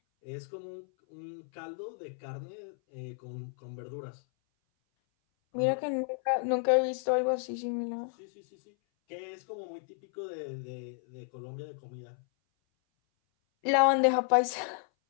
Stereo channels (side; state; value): right; silent; 56 dB below the other